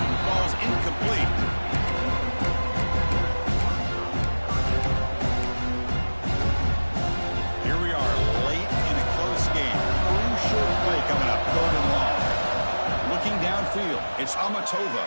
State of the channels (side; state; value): both; inverted; correlation -1.00